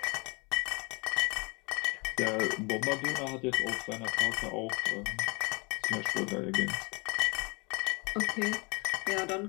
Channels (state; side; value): quieter; right; 29.7 dB